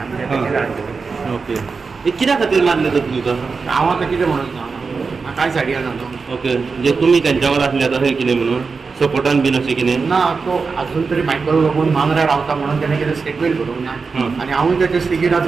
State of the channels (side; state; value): left; quieter; 4.8 dB